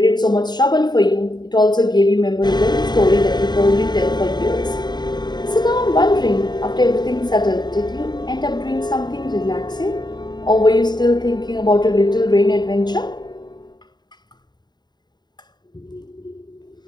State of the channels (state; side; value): late; right; 0.21 ms